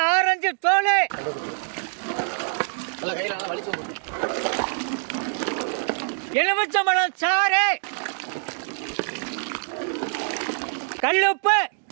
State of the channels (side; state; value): left; silent; 62 dB below the other